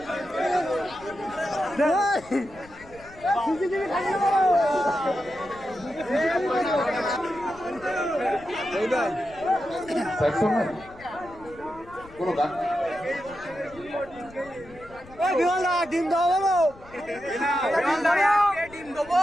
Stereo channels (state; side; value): noise; left; rumble, 21 dB below the sound